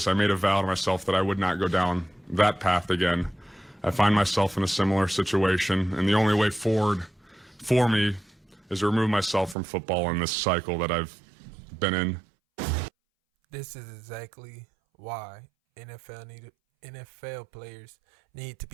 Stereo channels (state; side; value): drops out; left; at 9.6 s